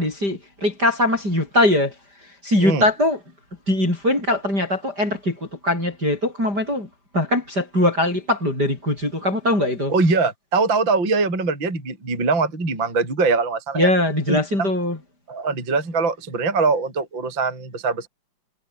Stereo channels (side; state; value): left; late; 5.0 ms